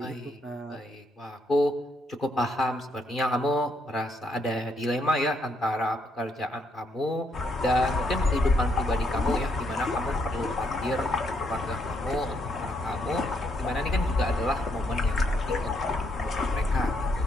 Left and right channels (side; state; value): both; normal; correlation 0.74